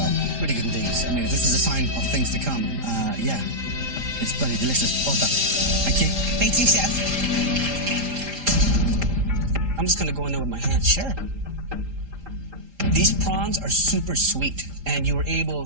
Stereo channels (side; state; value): left; late; 3.8 ms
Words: Really good indeed. I mean, if this is a sign of things to come, yeah, it's bloody delicious. Well done. Thank you. Thank you, Chef. I'm just going to go in there with my hands. Sure. These prawns are super sweet, and you were